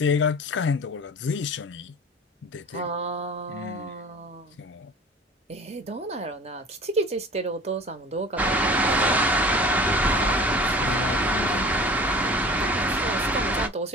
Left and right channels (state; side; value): normal; both; correlation 0.42